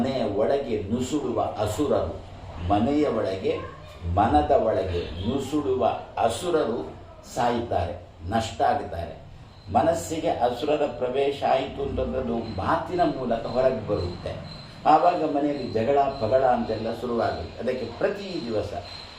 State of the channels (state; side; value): identical; both; correlation 1.00